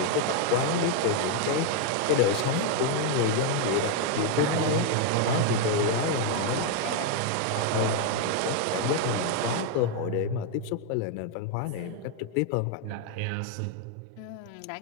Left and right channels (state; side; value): different; both; correlation 0.01